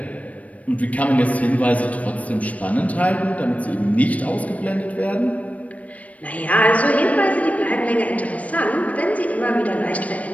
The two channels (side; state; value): right; late; 0.068 ms